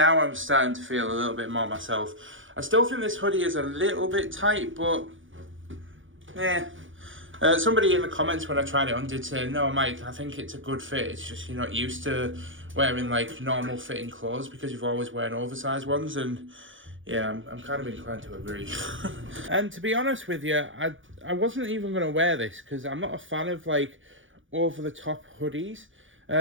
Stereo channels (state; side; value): late; left; 0.57 ms